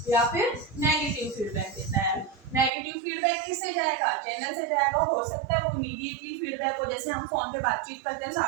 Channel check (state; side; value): drops out; left; at 2.7 s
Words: या फिर नेगेटिव फीडबैक देता है। नेगेटिव फीडबैक किससे जाएगा, चैनल से जाएगा। हो सकता है वो इमीडिएटली फीडबैक हो, जैसे हम फोन पे बातचीत करते हैं,